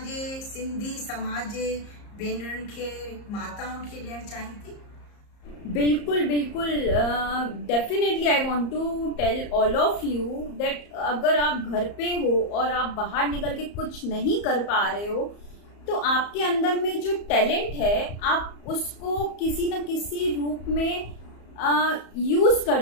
सिंधी समाज जे भेनरुनि खे, माताउनि खे ॾियणु चाहीं थी? बिल्कुल बिल्कुल, definitely I want to tell all of you that अगर आप घर पे हो और आप बाहर निकल के कुछ नहीं कर पा रहे हो, तो आपके अंदर में जो टैलेंट है आप उसको किसी न किसी रूप में यूज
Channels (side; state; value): right; late; 34 ms